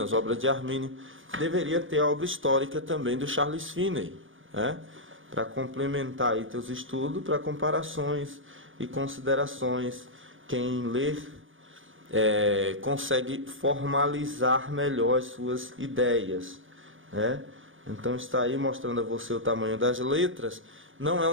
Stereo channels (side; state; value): left; late; 0.58 ms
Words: as obras de Armínio, deveria ter a obra histórica também do Charles Finney, né? Para complementar aí teus estudos, para comparações e considerações. Quem ler consegue formalizar melhor as suas ideias, né? Então está aí mostrando a você o tamanho das letras. Não é